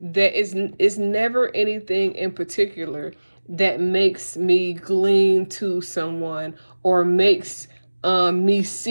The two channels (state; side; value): inverted; both; correlation -1.00